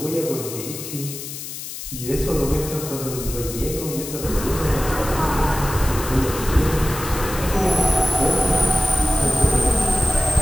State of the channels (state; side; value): noise; left; hiss, 9 dB below the sound